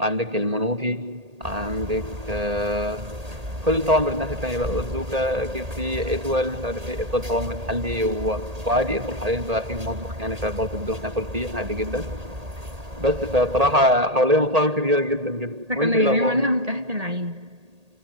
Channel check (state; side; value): late; left; 1.8 ms